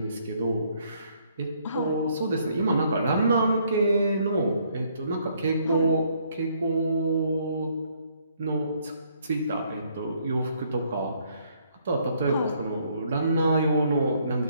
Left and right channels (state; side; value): inverted; both; correlation -0.68